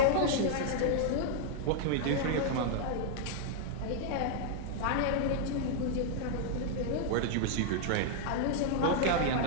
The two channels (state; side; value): different; both; correlation -0.01